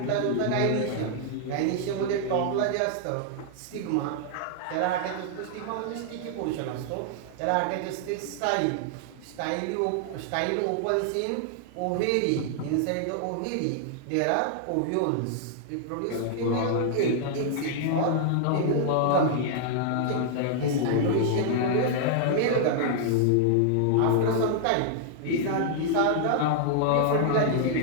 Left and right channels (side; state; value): both; different; correlation -0.01